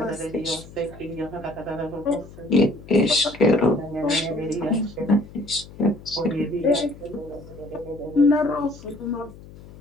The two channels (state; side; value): noise; left; hum, 18 dB below the sound